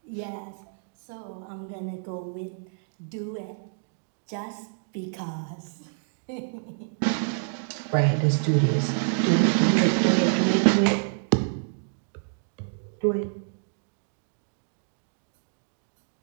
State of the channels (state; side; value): silent; left; digital silence